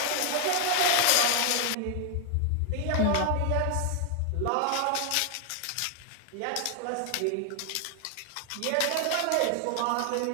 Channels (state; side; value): different; both; correlation 0.00